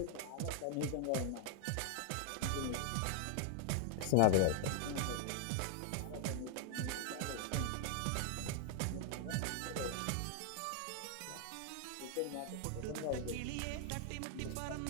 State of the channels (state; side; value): different; both; correlation 0.00